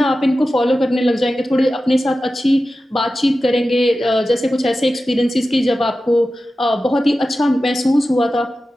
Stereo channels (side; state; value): both; normal; correlation 0.94